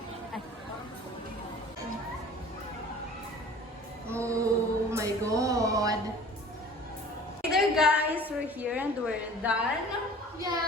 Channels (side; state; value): both; normal; correlation 0.45